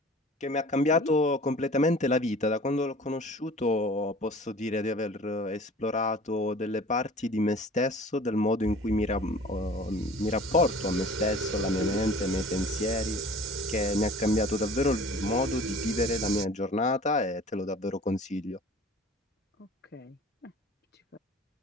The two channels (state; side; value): normal; both; correlation 0.45